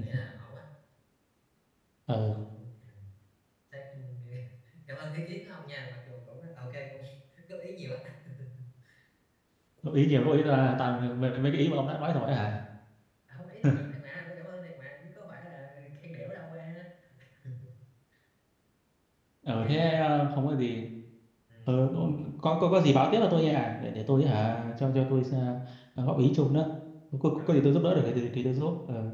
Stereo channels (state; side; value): identical; both; correlation 1.00